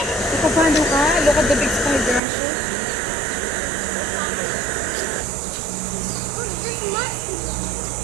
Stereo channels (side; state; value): left; drops out; at 2.2 s